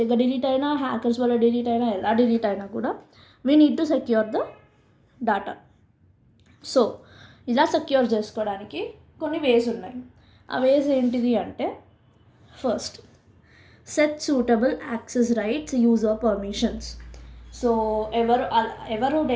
డిలీట్ అయినా, హ్యాకర్స్ వల్ల డిలీట్ అయినా, ఎలా డిలీట్ అయినా కూడా we need to secure the data. So ఇలా సెక్యూర్ చేసుకోవడానికి కొన్ని వేస్ ఉన్నాయి. ఆ వేస్ ఏంటిది అంటే, first, set suitable access rights, user permissions. So ఎవరు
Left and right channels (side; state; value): both; identical; correlation 1.00